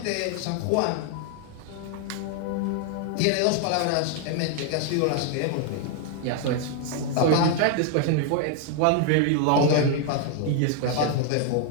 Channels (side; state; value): both; different; correlation 0.00